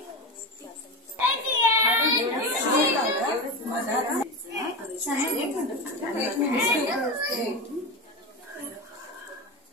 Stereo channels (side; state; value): both; normal; correlation 0.21